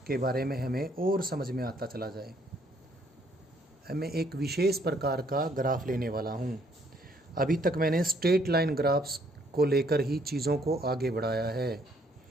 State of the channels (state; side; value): normal; both; correlation 0.67